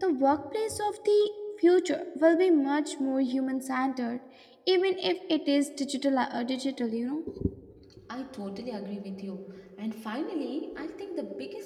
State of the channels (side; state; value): both; identical; correlation 1.00